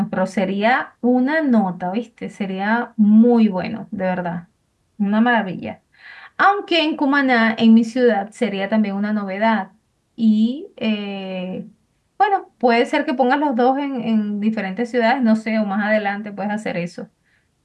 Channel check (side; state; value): both; identical; correlation 1.00